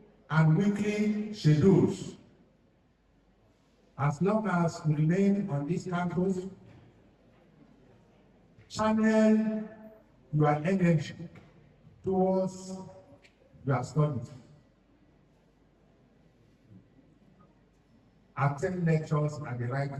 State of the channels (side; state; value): both; identical; correlation 1.00